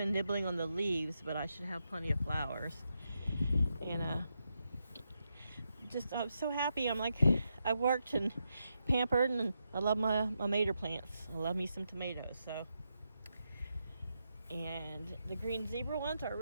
nibbling on the leaves, but I should have plenty of flowers. And I'm so happy. I'm like, I worked and pampered, and I love my mater plants. I love me some tomatoes. So, and the green zebra ones are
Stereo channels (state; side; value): inverted; both; correlation -0.84